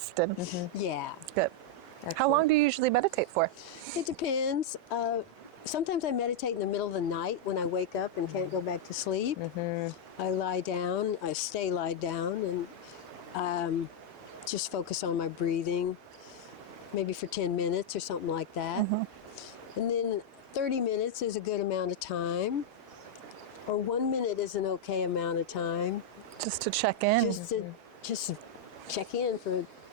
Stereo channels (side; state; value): both; normal; correlation -0.02